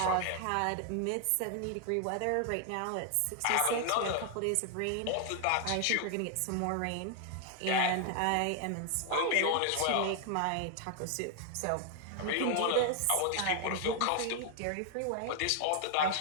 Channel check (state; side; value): different; both; correlation 0.00